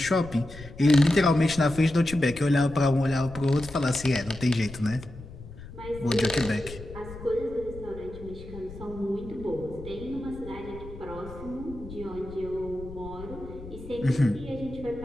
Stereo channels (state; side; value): noise; left; rumble, 14 dB below the sound